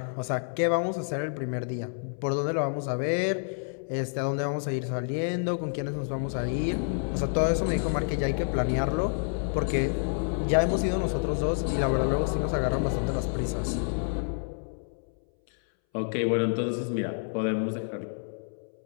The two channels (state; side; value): silent; right; 59 dB below the other